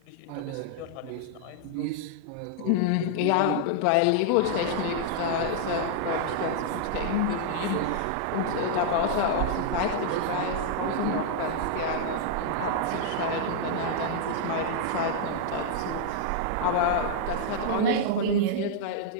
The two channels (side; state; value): both; different; correlation -0.01